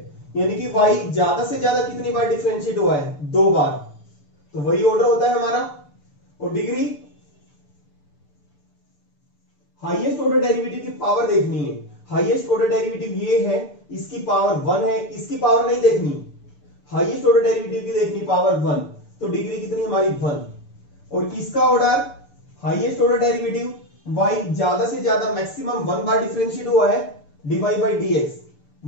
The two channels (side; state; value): right; late; 6.9 ms